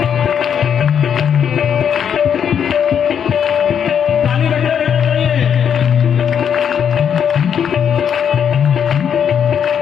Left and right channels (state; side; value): quieter; right; 8.1 dB